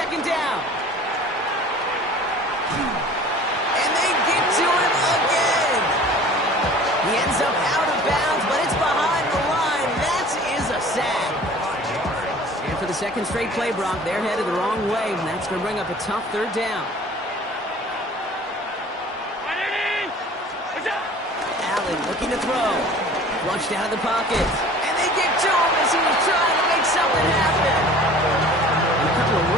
down. And they get to him again. He ends up out of bounds, but it's behind the line. That is a sack. And for the second straight play, Brock, they're headed the wrong way, and that's going to bring up a tough 3rd down. Allen looking to throw. Flushed out of the pocket. And they get to him as he was trying to make something happen. And a couple of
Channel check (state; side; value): normal; both; correlation 0.46